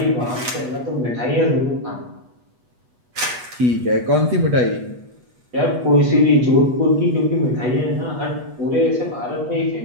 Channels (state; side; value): late; left; 8.2 ms